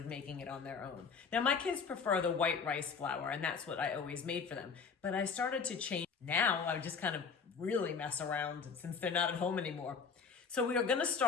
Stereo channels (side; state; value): right; quieter; 5.6 dB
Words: making it on their own. Now my kids prefer the white rice flour, and that's what I always made for them. But I started to change. Now I just kind of really mess around since they're not at home anymore. So we are gonna